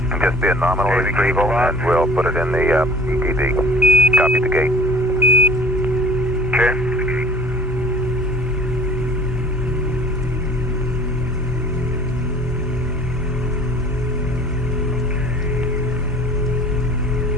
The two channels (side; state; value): both; normal; correlation 0.47